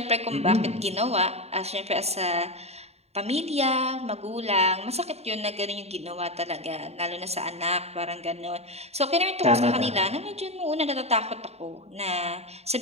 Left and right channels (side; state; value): left; late; 0.30 ms